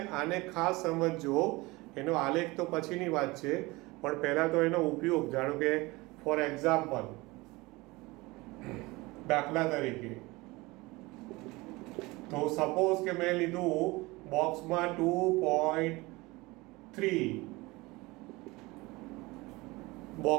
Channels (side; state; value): left; quieter; 22.4 dB